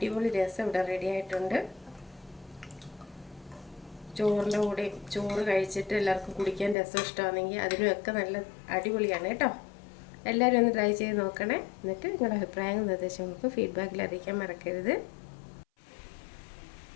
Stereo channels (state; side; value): drops out; right; at 6.8 s